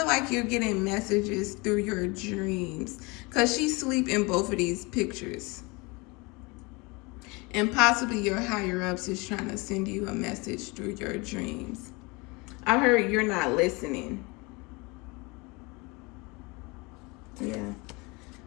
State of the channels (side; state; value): right; quieter; 26.7 dB